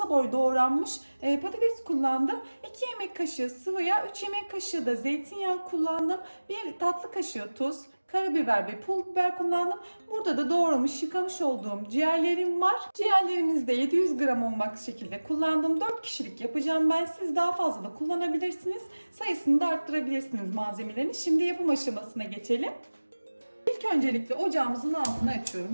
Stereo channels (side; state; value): both; inverted; correlation -1.00